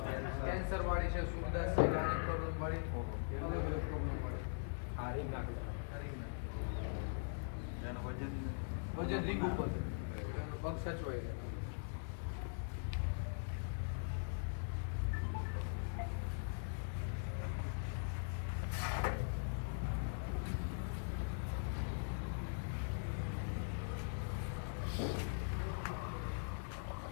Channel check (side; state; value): right; silent; digital silence